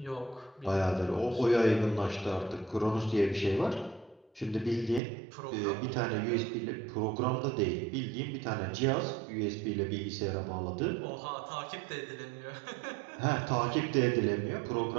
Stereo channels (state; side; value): drops out; left; at 5.0 s